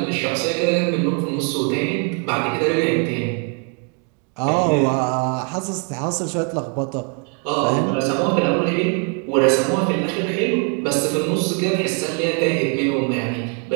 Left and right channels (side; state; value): left; quieter; 38.9 dB